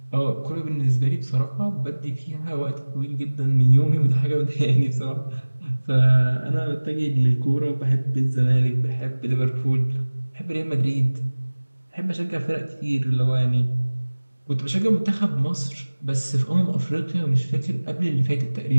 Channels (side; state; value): both; inverted; correlation -1.00